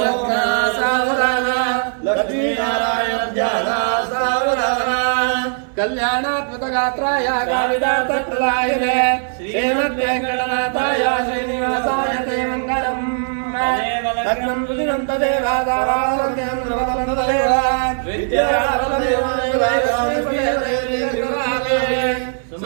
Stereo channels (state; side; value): silent; left; 60 dB below the other